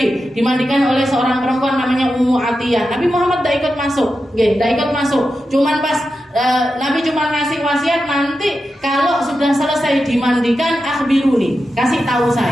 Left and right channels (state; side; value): normal; both; correlation 0.90